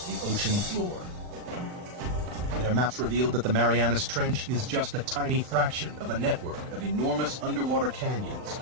the ocean floor. Their maps revealed that the Marianas Trench is just a tiny fraction of a network of enormous underwater canyons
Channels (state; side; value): late; left; 39 ms